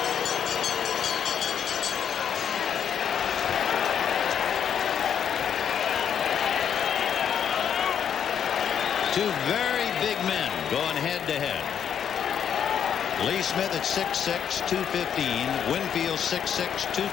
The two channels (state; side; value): quieter; right; 8.4 dB